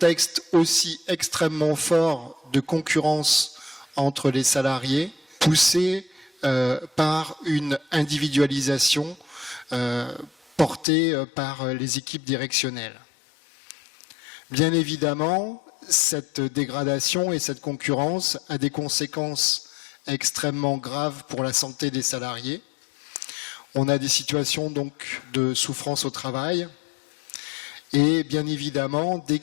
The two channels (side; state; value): right; drops out; at 10.9 s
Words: aussi extrêmement fort de concurrence entre les salariés, poussé par une individualisation portée par les équipes directionnelles. Bien évidemment, cette dégradation et cette concurrence a des conséquences extrêmement graves pour la santé des salariés. On a des situations donc de souffrance au travail Et bien évidemment, dès